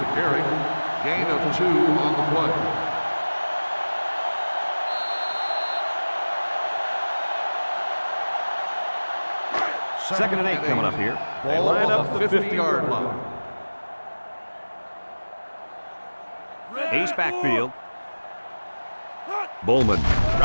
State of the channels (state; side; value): inverted; both; correlation -1.00